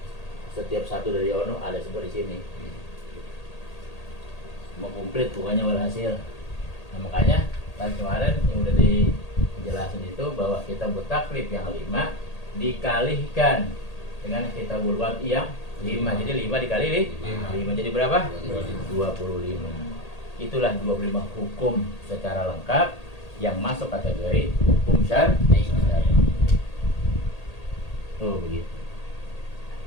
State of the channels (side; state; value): right; late; 1.8 ms